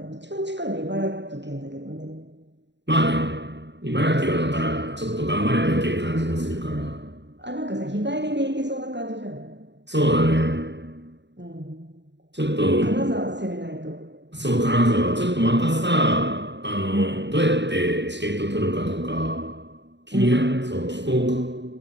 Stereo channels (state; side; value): late; left; 0.52 ms